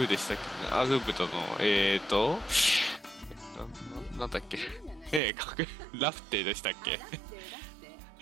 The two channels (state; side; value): drops out; left; at 5.2 s